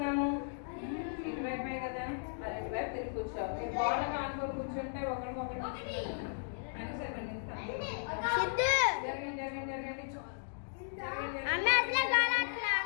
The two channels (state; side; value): silent; right; digital silence